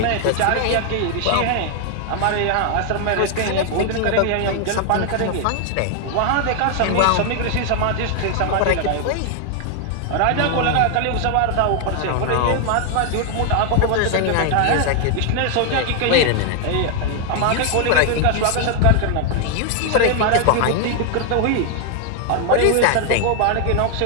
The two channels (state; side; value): different; both; correlation 0.00